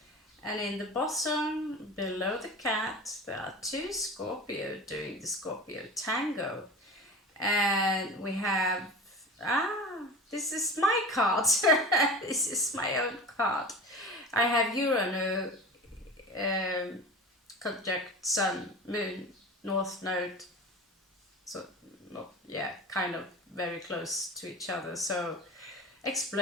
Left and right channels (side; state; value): both; normal; correlation 0.33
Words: And in the bottom, below the cat, there are two Scorpio doing the Scorpio tango. And we have, this is my card. This is my own card. I have Uranus, conjunct Sun, Moon, North Node. So, not, yeah, kind of very close to each other. So,